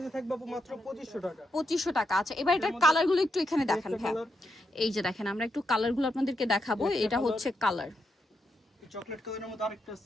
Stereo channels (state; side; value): normal; both; correlation 0.83